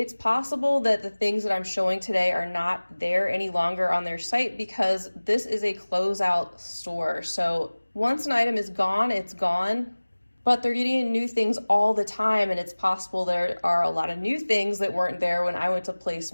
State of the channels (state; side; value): inverted; both; correlation -1.00